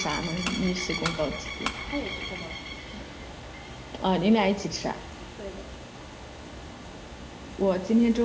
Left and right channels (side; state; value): both; identical; correlation 1.00